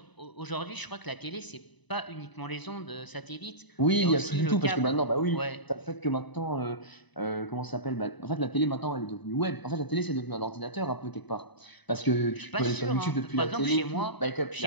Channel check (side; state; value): right; late; 1.0 ms